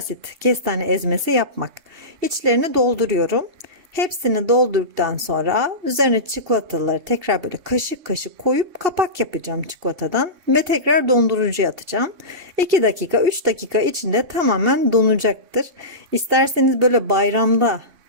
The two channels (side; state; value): left; late; 2.7 ms